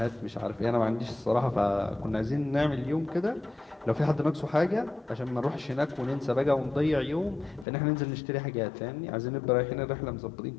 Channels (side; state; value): right; drops out; at 7.7 s